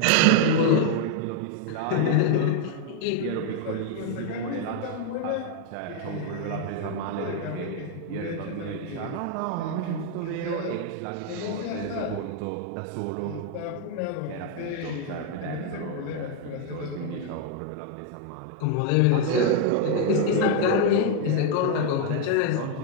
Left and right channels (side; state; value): both; different; correlation 0.00